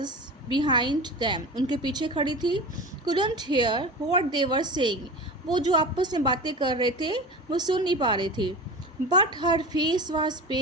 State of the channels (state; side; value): normal; both; correlation 0.31